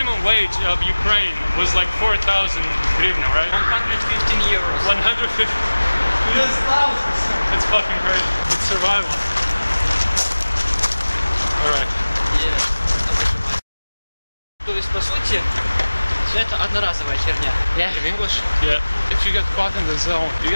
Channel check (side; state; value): both; inverted; correlation -1.00